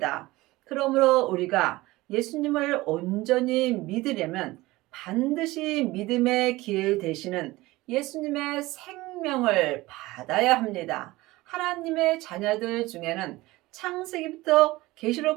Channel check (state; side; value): quieter; left; 19.6 dB